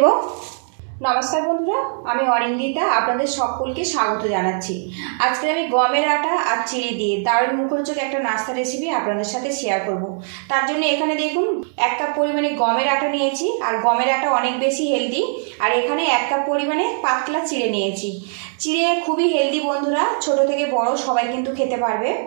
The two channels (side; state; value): left; silent; 65 dB below the other